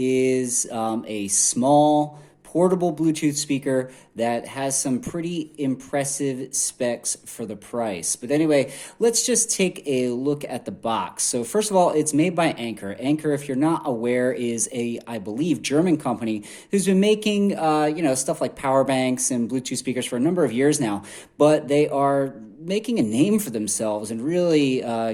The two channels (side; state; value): both; identical; correlation 1.00